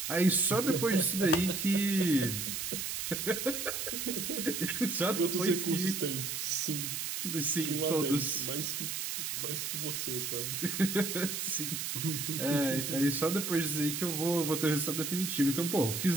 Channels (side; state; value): right; noise; hiss, 3 dB below the sound